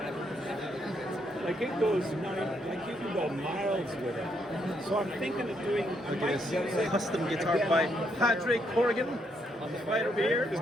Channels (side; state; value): both; normal; correlation 0.75